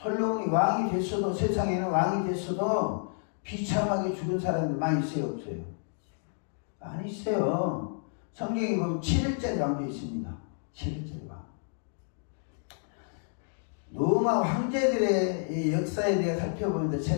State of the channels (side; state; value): right; silent; digital silence